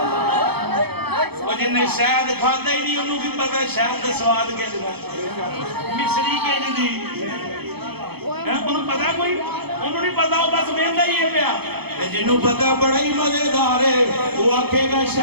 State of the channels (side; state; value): left; late; 0.97 ms